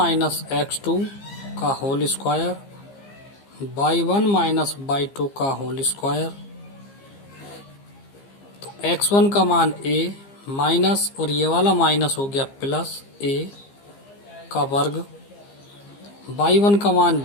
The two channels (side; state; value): right; late; 15 ms